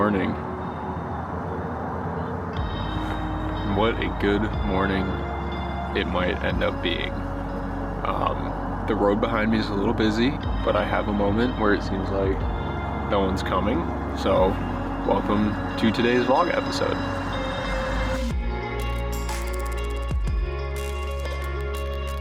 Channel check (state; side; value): identical; both; correlation 1.00